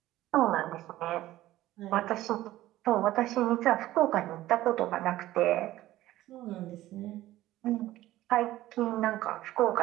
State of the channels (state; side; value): quieter; left; 15.4 dB